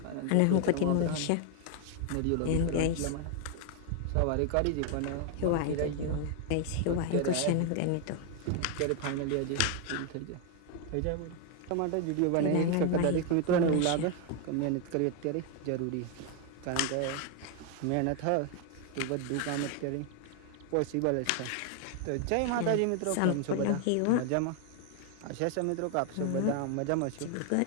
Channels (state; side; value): different; both; correlation 0.00